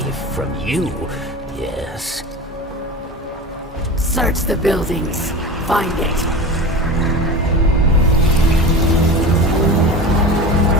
from you, yes. Search the buildings. Find it.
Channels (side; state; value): both; normal; correlation 0.30